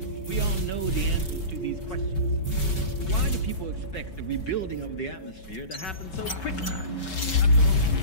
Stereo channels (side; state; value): right; late; 5.3 ms